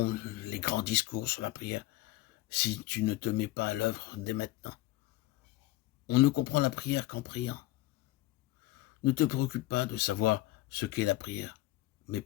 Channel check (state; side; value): quieter; right; 17.8 dB